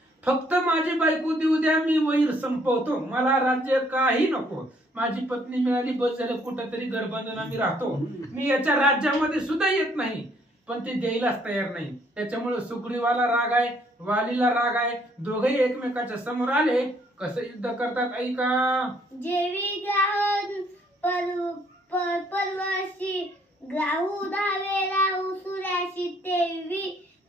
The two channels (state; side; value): normal; both; correlation 0.65